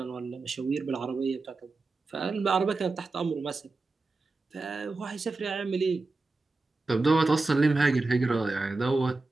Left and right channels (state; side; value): quieter; left; 3.5 dB